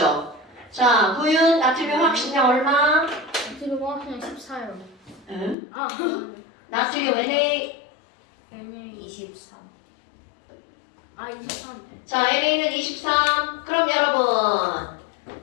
자, 구윤 나트륨 확신량 얼마? 지금 그냥 14요. 응? 아, 나트륨 Na. NA 23. 아 23. 자, NA는 23. 그럼 여러분,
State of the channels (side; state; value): right; drops out; at 5.6 s